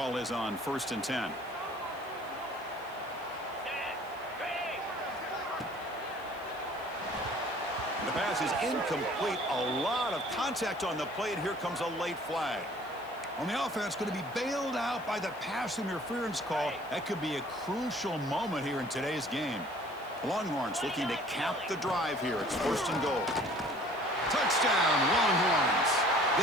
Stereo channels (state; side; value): noise; left; hiss, 25 dB below the sound